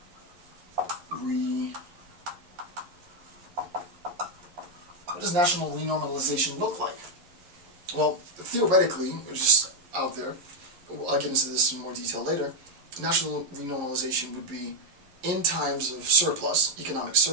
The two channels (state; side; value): late; left; 11 ms